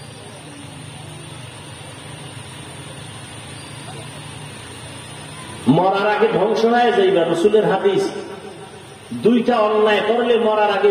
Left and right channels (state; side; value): identical; both; correlation 1.00